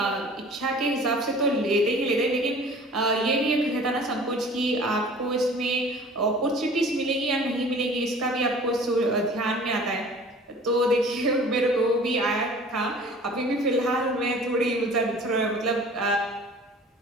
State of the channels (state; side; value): normal; both; correlation 0.46